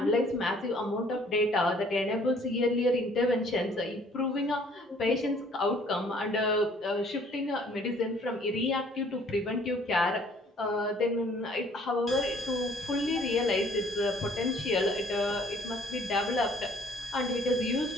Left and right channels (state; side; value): normal; both; correlation 0.58